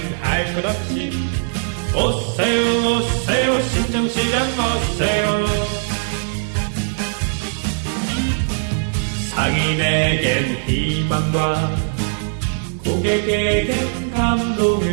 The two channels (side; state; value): left; silent; digital silence